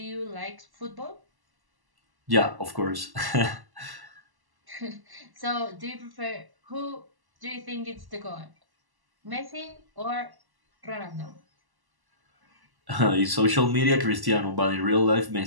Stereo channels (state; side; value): late; left; 1.1 ms